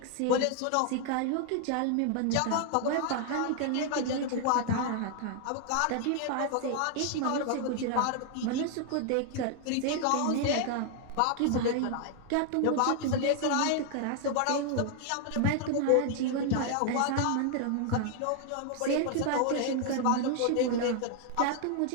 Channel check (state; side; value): different; both; correlation 0.00